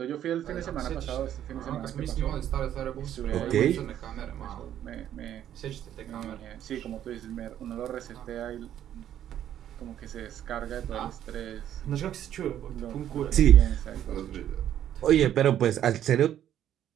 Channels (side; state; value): left; quieter; 10.9 dB